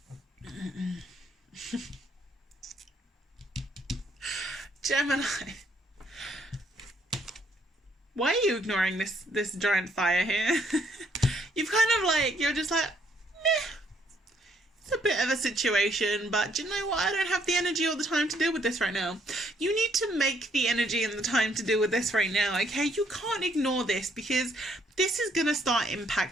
Gemini. Why are you ignoring this giant fire here? You've kind of like, you're just like, meh. It's a bit of a situation, but do you know what? I don't have the energy or the time to deal with this right now. You need to make the energy and the time to deal with this right now, okay? You can't ignore this because this is going to start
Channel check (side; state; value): both; normal; correlation 0.69